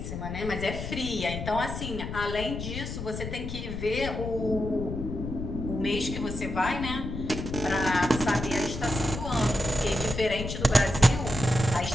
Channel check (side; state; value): left; noise; rumble, 6 dB below the sound